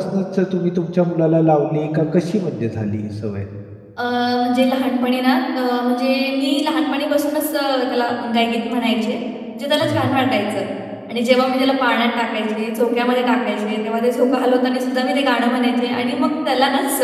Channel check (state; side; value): identical; both; correlation 1.00